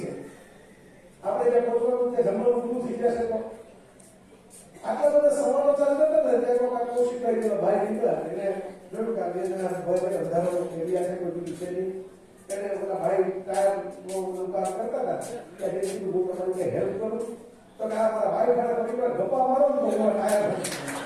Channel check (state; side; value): identical; both; correlation 1.00